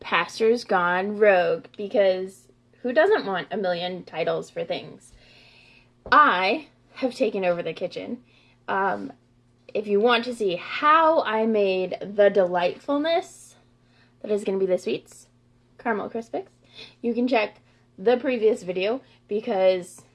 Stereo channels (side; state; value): both; identical; correlation 1.00